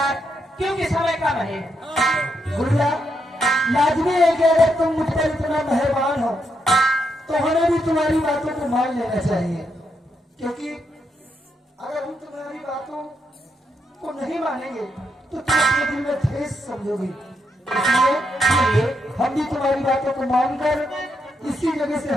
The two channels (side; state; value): both; normal; correlation 0.80